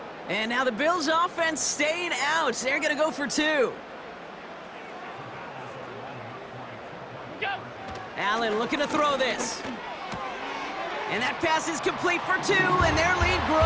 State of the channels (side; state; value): both; identical; correlation 1.00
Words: And now the Bills' offense staying out. They're going to go for 2. Look out! Allen looking to throw this. And that pass is complete for 2, and their lead